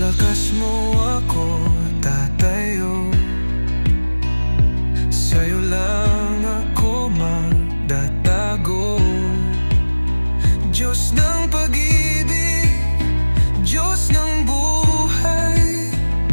mo ako tatayo, sa'yo lang ako magtatago. Diyos ng pag-ibig, Diyos ng buhay,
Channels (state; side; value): inverted; both; correlation -1.00